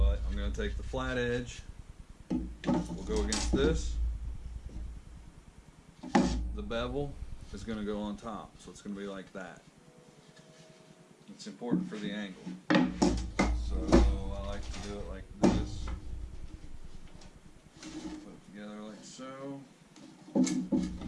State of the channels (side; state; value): both; identical; correlation 1.00